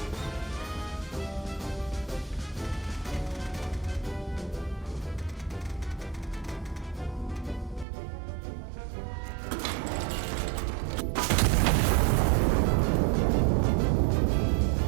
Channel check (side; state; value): left; drops out; at 7.9 s